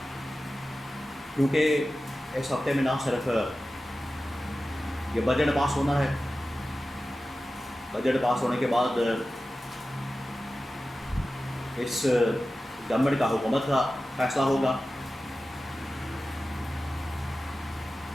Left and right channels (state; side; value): normal; both; correlation 0.95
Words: کیونکہ اس ہفتے میں نہ صرف یہ بجٹ پاس ہونا ہے، بجٹ پاس ہونے کے بعد اس گورنمنٹ کا حکومت کا فیصلہ ہوگا،